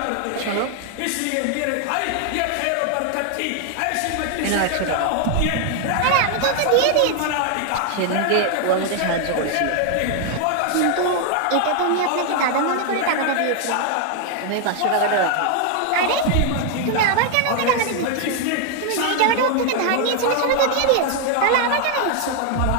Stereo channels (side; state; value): both; different; correlation 0.00